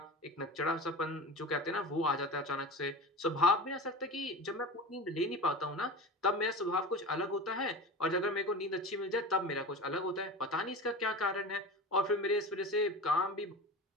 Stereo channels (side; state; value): both; normal; correlation 0.31